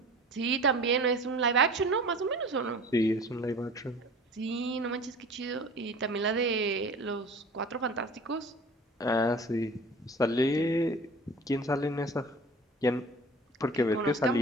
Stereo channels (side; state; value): both; normal; correlation 0.42